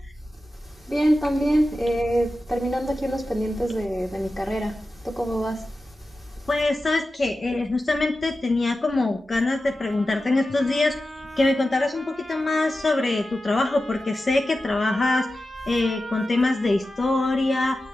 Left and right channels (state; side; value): normal; both; correlation 0.93